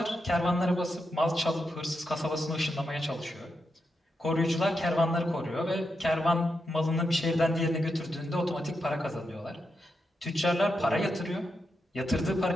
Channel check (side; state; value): both; normal; correlation 0.85